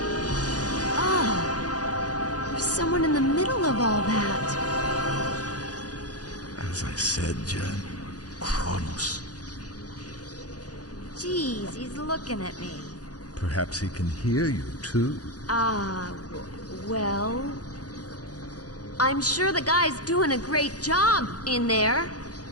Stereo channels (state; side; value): late; right; 0.68 ms